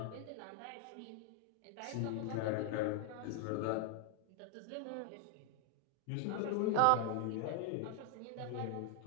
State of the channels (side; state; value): both; different; correlation 0.00